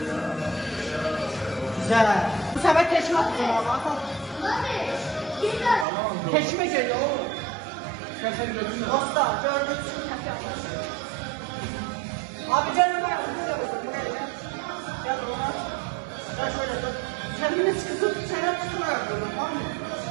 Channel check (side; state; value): left; drops out; at 5.9 s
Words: Güzel. Bu sefer teşme atacağım abi. Teşme geliyor oğlum. Dostlar gördüğünüz gibi teşme atacağım. Abi canım ben buraya gel. Gel buna. Gel şöyle dur. Kendini sıkıtıp çene tutmaya yapıyorum, tamam mı?